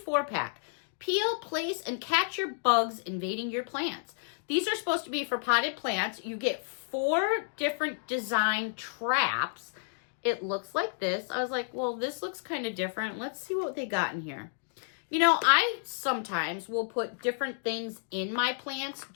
Peel, place, and catch your bugs invading your plants. These are supposed to be for potted plants. You get 4 different design traps. It looks like this. I was like, well, this looks kind of different. Let's see what they got in here. I sometimes will put different things in my plants,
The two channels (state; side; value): silent; right; digital silence